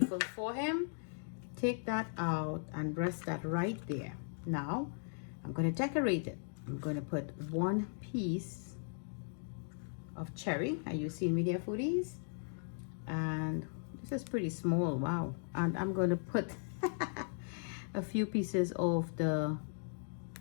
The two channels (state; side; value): silent; right; digital silence